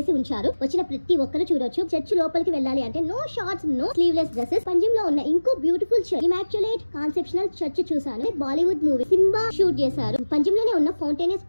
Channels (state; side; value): inverted; both; correlation -1.00